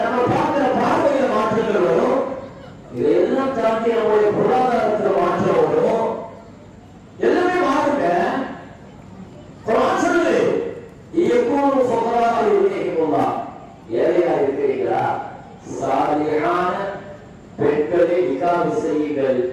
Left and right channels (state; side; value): identical; both; correlation 1.00